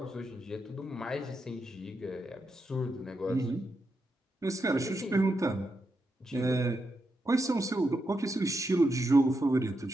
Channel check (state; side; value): normal; both; correlation 0.85